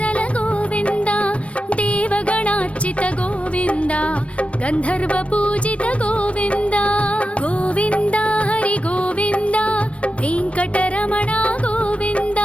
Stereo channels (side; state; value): right; late; 0.062 ms